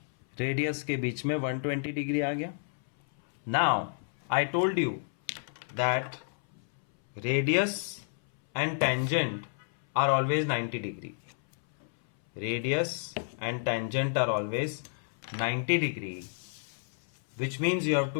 radius के बीच में 120 degree आ गया। Now I told you that radius and tangent are always 90 degree. Radius and tangent are always 90 degree, which means you have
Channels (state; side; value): silent; right; 57 dB below the other